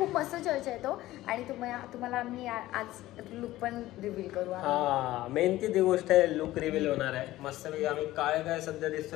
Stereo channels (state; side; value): quieter; right; 16.1 dB